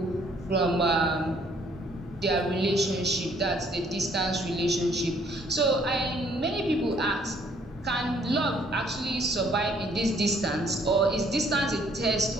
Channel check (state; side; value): normal; both; correlation 0.63